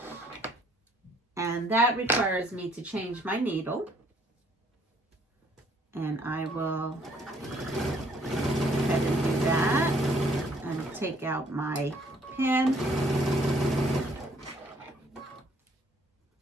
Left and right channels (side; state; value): both; normal; correlation 0.63